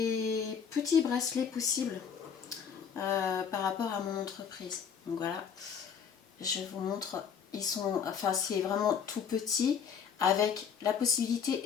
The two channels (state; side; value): quieter; right; 7.1 dB